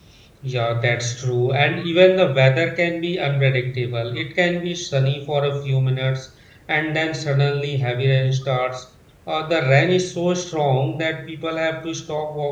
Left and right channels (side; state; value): both; identical; correlation 1.00